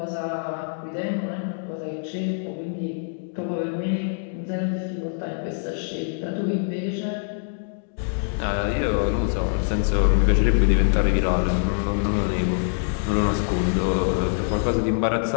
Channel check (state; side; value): silent; right; 62 dB below the other